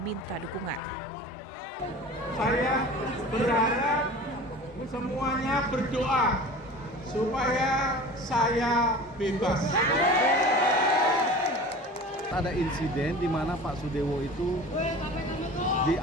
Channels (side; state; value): both; normal; correlation 0.38